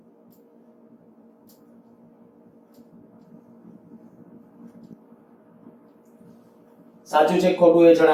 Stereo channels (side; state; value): both; identical; correlation 1.00